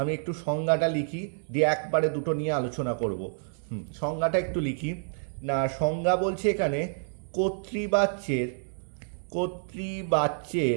একটু সংজ্ঞাটা লিখি, দিয়ে একবারে দুটো নিয়ে আলোচনা করব। সংজ্ঞাটা একটু লিখি না। সংজ্ঞা বলছে এখানে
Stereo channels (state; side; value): silent; left; digital silence